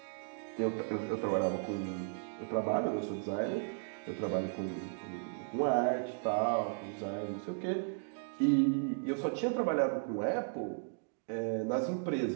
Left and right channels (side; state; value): left; silent; digital silence